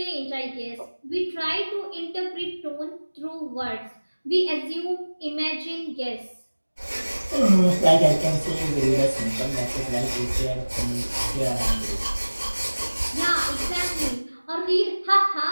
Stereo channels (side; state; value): both; inverted; correlation -1.00